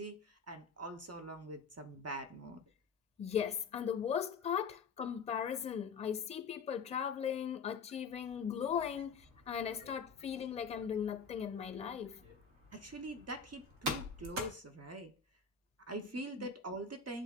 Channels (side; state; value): right; quieter; 5.5 dB